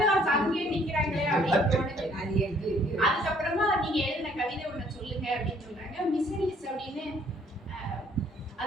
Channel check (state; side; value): normal; both; correlation 0.62